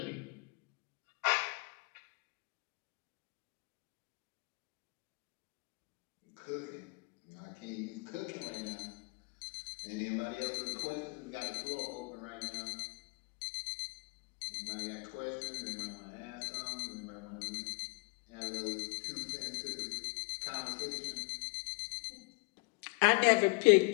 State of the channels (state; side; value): quieter; right; 29.8 dB